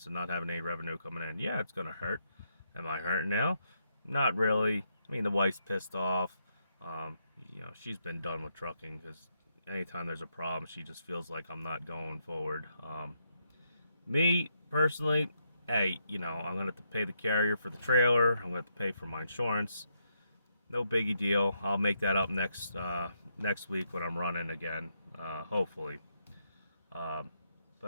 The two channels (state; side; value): inverted; both; correlation -0.79